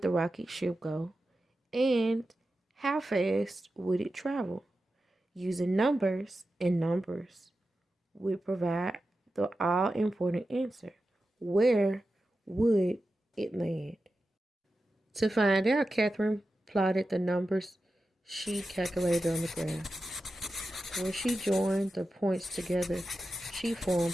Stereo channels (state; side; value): normal; both; correlation 0.92